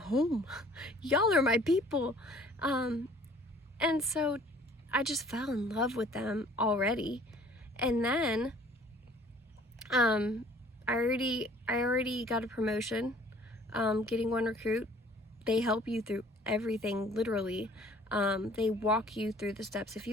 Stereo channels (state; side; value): normal; both; correlation 0.54